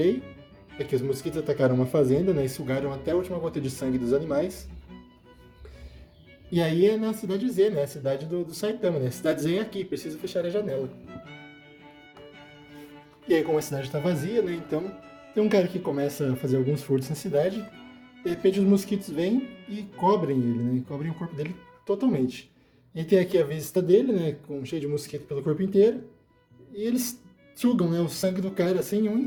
É que os mosquitos atacaram uma fazenda, né, e sugaram até a última gota de sangue dos animais. E aí é na cidade Z, né? A cidade do Saitama, né? A cidade Z é aqui, precisa fechar a janela. E aí, como a cidade está vazia, né? Então, tem um cara que começa a fazer alguns furtos na cidade. De repente, os mosquitos vêm e cobrem ele, né? Cobrem o corpo dele totalmente. E tem aqui a vista dele, né? Cheio de mosquito pelo corpo inteiro. E eles sugam, né, o sangue do cara assim em um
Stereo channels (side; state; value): both; identical; correlation 1.00